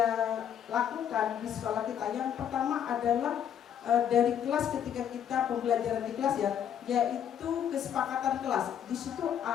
lakukan di sekolah kita, yang pertama adalah dari kelas, ketika kita pembelajaran di kelas ya, yaitu kesepakatan kelas. Di situ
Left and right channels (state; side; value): quieter; right; 9.2 dB